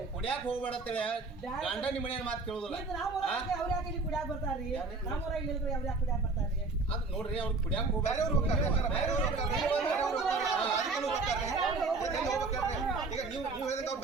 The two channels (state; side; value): quieter; left; 3.7 dB